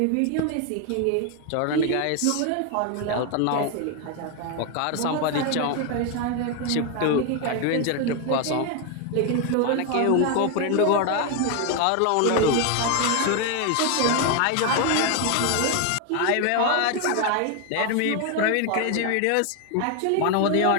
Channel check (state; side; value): different; both; correlation 0.01